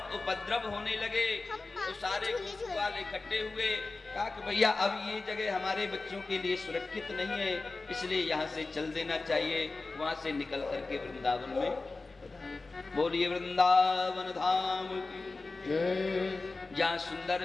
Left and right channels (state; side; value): quieter; right; 3.6 dB